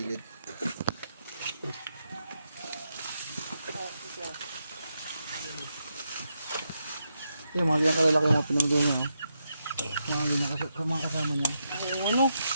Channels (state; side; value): inverted; both; correlation -0.83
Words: Yung mga ganyan kalalaki yung mga pinagdo niya. Mga kasama niya. Ano?